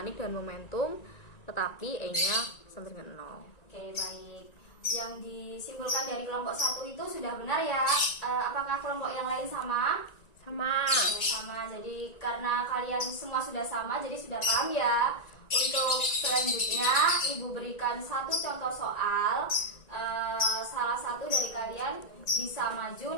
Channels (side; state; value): right; late; 1.9 ms